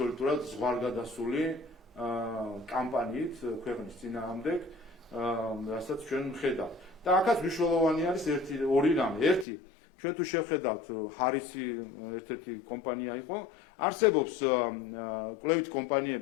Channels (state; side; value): drops out; right; at 9.5 s